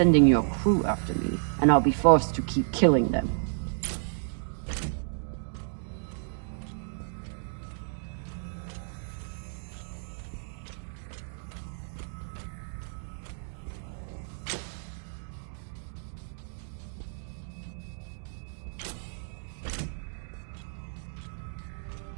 your crew after me, and I'll be forced to keep killing them.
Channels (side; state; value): left; silent; 57 dB below the other